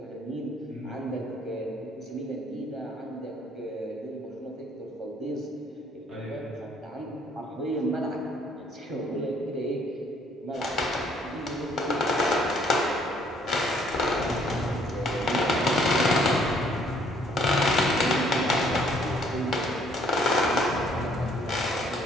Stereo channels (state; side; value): normal; both; correlation 0.63